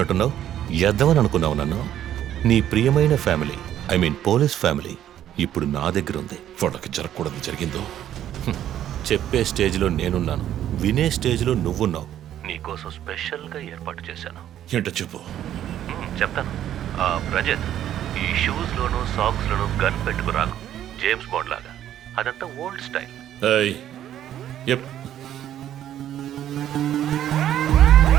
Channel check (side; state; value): left; quieter; 11.3 dB